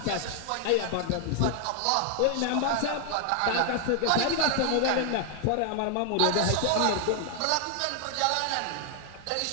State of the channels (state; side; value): different; both; correlation 0.00